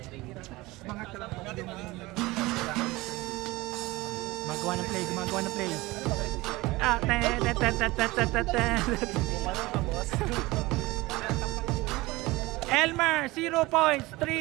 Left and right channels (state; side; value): quieter; left; 20.8 dB